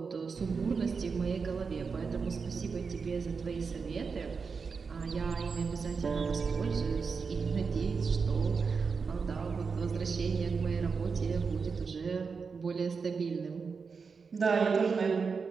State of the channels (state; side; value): quieter; left; 5.2 dB